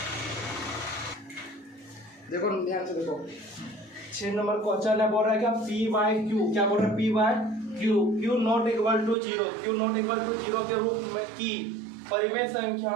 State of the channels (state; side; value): drops out; left; at 9.2 s